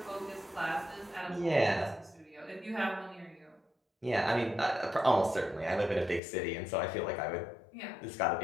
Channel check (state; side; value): drops out; right; at 6.2 s